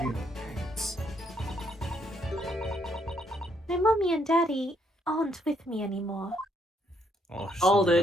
real parents? My mommy and daddy aren't with me anymore. Oh, Hold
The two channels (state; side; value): normal; both; correlation 0.72